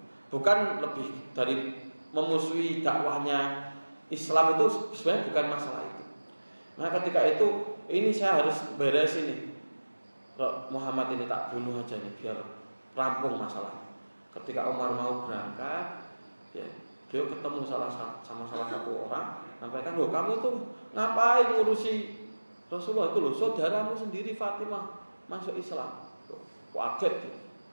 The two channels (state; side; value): inverted; both; correlation -1.00